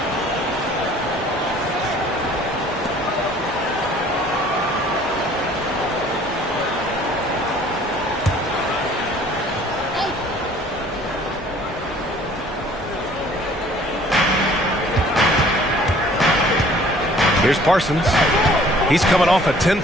Here's Parsons. He's coming off a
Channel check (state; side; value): normal; both; correlation 0.54